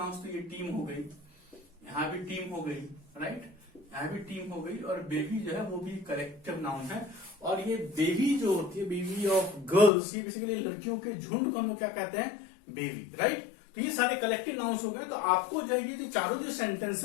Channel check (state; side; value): drops out; right; at 9.9 s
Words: तो ये टीम हो गई, यहाँ भी टीम हो गई, राइट? यहाँ भी टीम हो गई, और बेबी जो है वो भी कलेक्टिव नाउन है। और ये बेबी जो होती है, बेबी ऑफ गर्ल्स, ये बेसिकली लड़कियों के झुंड को हम लोग क्या कहते हैं? Baby, right? तो ये सारे कलेक्टिव नाउन्स हो गए। तो आपको जो है ये चारों जो